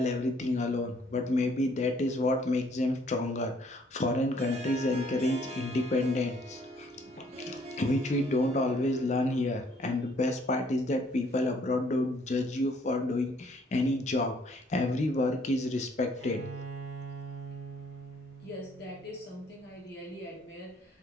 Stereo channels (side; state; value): both; normal; correlation 0.64